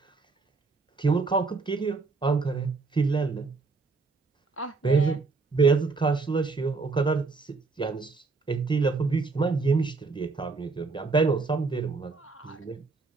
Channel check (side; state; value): left; quieter; 4.1 dB